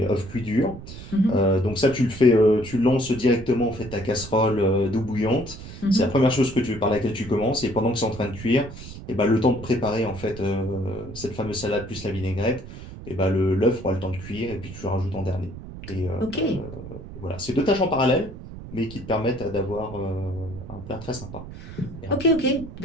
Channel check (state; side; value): noise; right; rumble, 13 dB below the sound